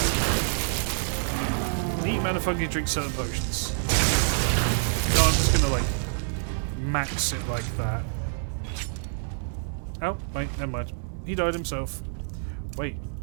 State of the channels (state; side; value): silent; left; digital silence